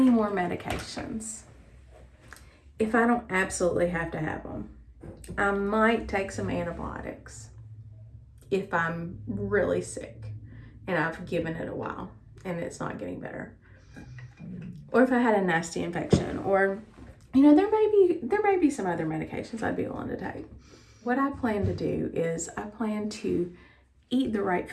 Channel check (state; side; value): identical; both; correlation 1.00